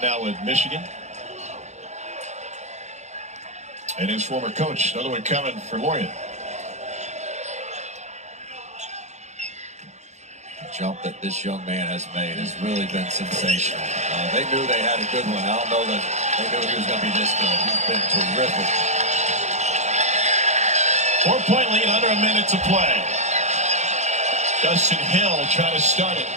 now with Michigan. And his former coach, another one coming for Lorient. The jump that this young man has made has really been sensational. They knew they had a good one. I don't know that they knew he was going to be this good. He's been terrific. 4-point lead, under a minute to play. Justin Hill trying to start it.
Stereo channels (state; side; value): late; left; 0.33 ms